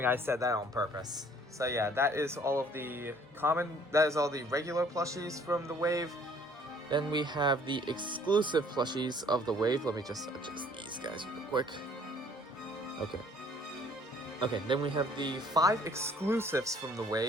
I said that on purpose. So yeah, that is all the regular plushies from the wave. Then we have the exclusive plushies of the wave. Let me just adjust these guys real quick. Okay. Okay, then we have the 5 exclusives from the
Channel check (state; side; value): normal; both; correlation 0.57